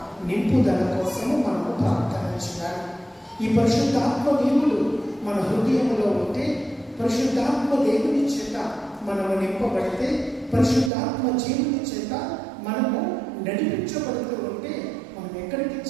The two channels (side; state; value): left; drops out; at 10.9 s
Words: నింపుదల కోసము మనము ప్రార్థన చేయాలి. ఈ పరిశుద్ధాత్మ దేవుడు మన హృదయంలో ఉంటే, పరిశుద్ధాత్మ దేవుని చేత మనము నింపబడితే, పరిశుద్ధాత్మ జీవుని చేత మనము నడిపించబడుతూ ఉంటే మనం ఎక్కడికి